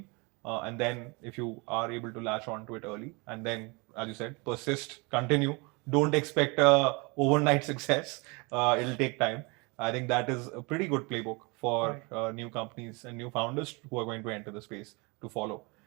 and then if you are able to latch on to it early, and then, as you said, persist, continue. Don't expect a overnight success. It'll take time. I think that is a pretty good playbook for new companies and new founders who are going to enter the space to follow.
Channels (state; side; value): quieter; left; 28.7 dB